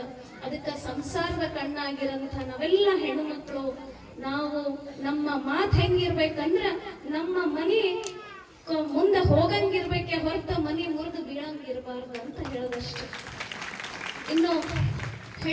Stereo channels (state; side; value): identical; both; correlation 1.00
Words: ಅದಕ್ಕ ಸಂಸಾರದ ಕಣ್ಣಾಗಿರಂತ ನಾವೆಲ್ಲ ಹೆಣ್ಣು ಮಕ್ಕಳು ನಾವು ನಮ್ಮ ಮಾತು ಹೆಂಗಿರ್ಬೇಕಂದ್ರ ನಮ್ಮ ಮನಿ ಮುಂದೆ ಹೋಗಂಗಿರ್ಬೇಕೆ ಹೊರತ ಮನಿ ಮುರಿದು ಬೀಳಂಗಿರ್ಬಾರ್ದು ಅಂತ ಹೇಳೋದಷ್ಟೇ. ಇನ್ನು